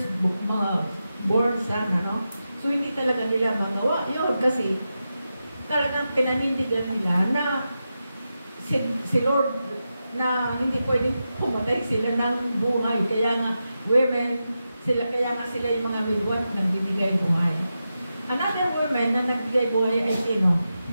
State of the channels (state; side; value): inverted; both; correlation -0.90